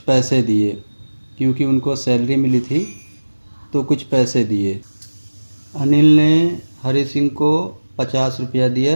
दिए, क्योंकि उनको सैलरी मिली थी तो कुछ पैसे दिए। अनिल ने हरि सिंह को 50 रुपया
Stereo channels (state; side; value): inverted; both; correlation -1.00